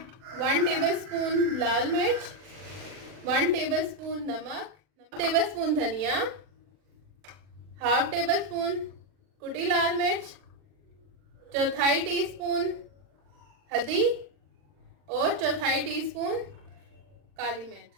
1 टेबलस्पून लाल मिर्च, 1 टेबलस्पून नमक, 1 टेबलस्पून धनिया, हाफ टेबलस्पून कुटी लाल मिर्च, 1/4 टीस्पून हल्दी और 1/4 टीस्पून काली मिर्च।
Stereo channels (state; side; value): late; left; 40 ms